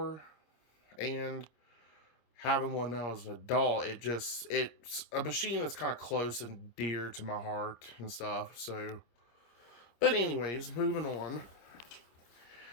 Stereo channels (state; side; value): late; right; 26 ms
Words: And having one now as an adult, it's a machine that's kind of close and dear to my heart and stuff. So, but anyways, moving on.